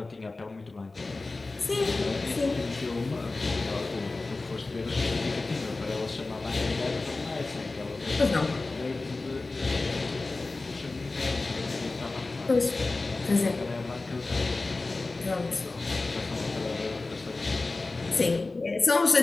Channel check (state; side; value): quieter; right; 3.4 dB